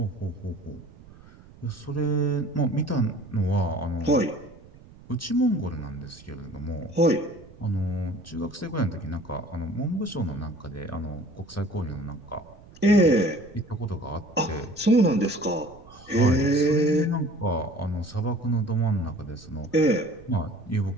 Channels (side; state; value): right; noise; rumble, 22 dB below the sound